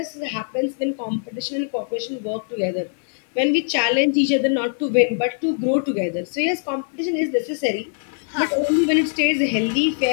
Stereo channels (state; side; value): silent; right; digital silence